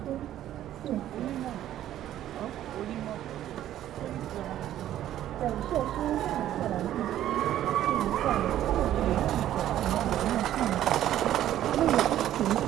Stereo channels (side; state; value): left; quieter; 12.3 dB